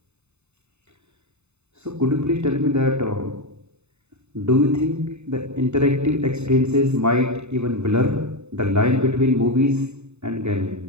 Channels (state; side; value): late; left; 0.81 ms